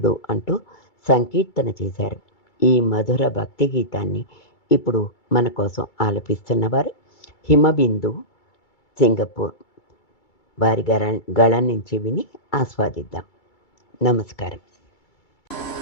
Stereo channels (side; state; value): right; late; 2.3 ms